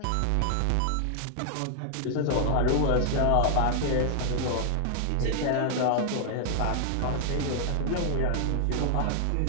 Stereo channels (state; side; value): different; both; correlation 0.00